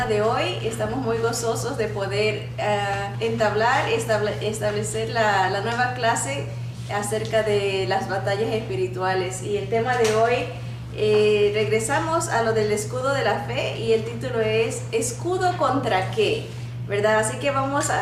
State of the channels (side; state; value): both; identical; correlation 1.00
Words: de hoy. Estamos muy gozosos de poder establecer la nueva clase acerca de las batallas espirituales. Y el tema de hoy, regresamos a lo del escudo de la fe y el título es ¿escudo contra qué? ¿Verdad? Así que vamos